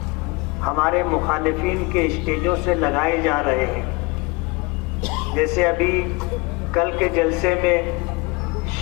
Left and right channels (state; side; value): quieter; right; 26.4 dB